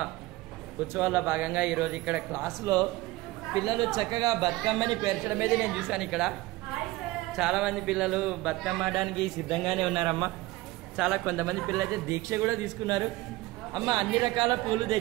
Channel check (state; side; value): quieter; left; 19.5 dB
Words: ఉత్సవాల్లో భాగంగా ఈరోజు ఇక్కడ క్లాసులో పిల్లలు చక్కగా బతుకమ్మని పేర్చడం మీద నేను చూశాను. ఇక్కడ చాలామంది పిల్లలు బతుకమ్మ ఆడడానికి సిద్ధంగానే ఉన్నారమ్మా. కొంతమంది పిల్లలు అయితే దీక్ష కూడా తీసుకున్నారు. అమ్మ అన్ని రకాల పూలు